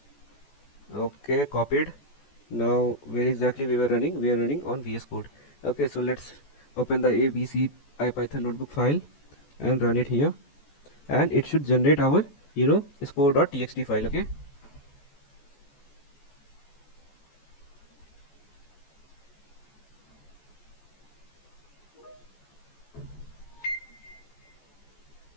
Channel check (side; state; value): right; late; 14 ms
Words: okay, copied. Now where exactly we were running? We are running on VS Code. Okay, so let's open the ABC IPython notebook file and run it here, and it should generate our score.txt file. Okay,